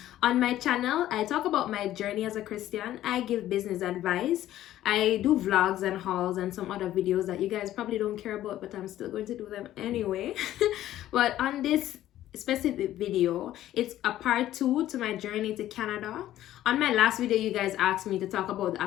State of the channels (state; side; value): quieter; right; 13.3 dB